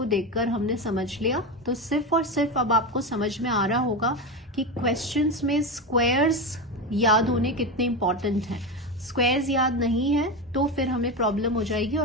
देखकर हमने समझ लिया, तो सिर्फ और सिर्फ अब आपको समझ में आ रहा होगा कि क्वेश्चंस में स्क्वायर्स याद होने कितने इंपॉर्टेंट हैं। स्क्वायर्स याद नहीं है तो फिर हमें प्रॉब्लम हो जाएगी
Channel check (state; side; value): normal; both; correlation 0.18